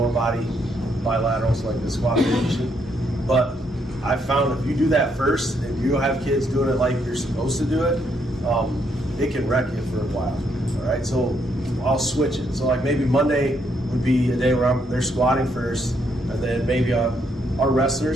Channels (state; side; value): normal; both; correlation 0.74